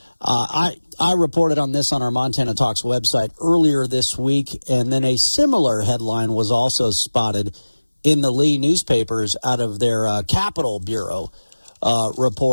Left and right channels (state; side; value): inverted; both; correlation -1.00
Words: I reported on this on our Montana Talks website earlier this week, and then a similar headline was also spotted in the Lee newspapers out of their Capitol Bureau